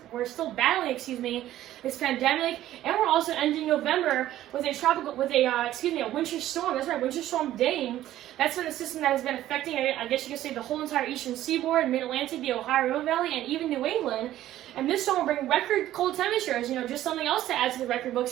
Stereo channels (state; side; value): quieter; left; 13.5 dB